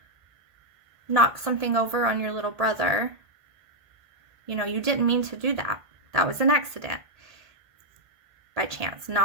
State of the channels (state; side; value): late; left; 1.7 ms